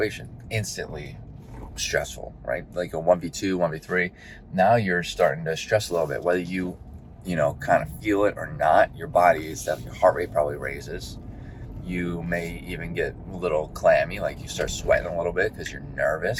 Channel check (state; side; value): identical; both; correlation 1.00